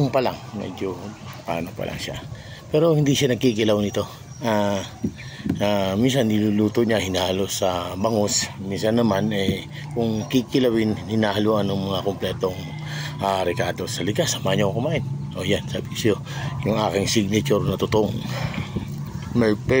pa lang. Medyo paano pa lang siya. Pero hindi siya nagkikilaw nito. Minsan niluluto niya, hinahalo sa bangus. Minsan naman kung kikilawin, hinahaluan ng mga kompletong ricado. Sa likas, samahan niyo ako kumain. O yan, sabi ko siyo, yung aking signature na tutong. My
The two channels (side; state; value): both; identical; correlation 1.00